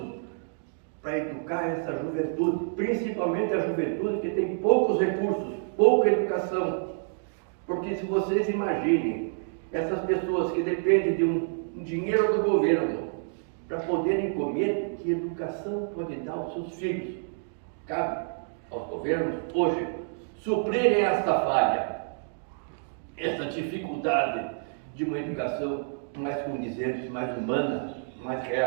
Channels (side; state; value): left; silent; digital silence